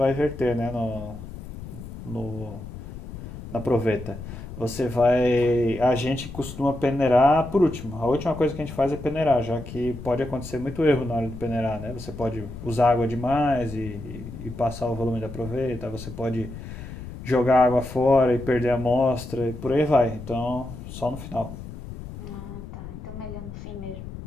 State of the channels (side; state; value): left; noise; rumble, 11 dB below the sound